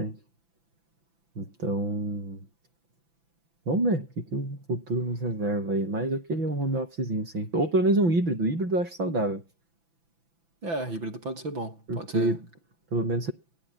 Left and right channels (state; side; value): late; left; 6.0 ms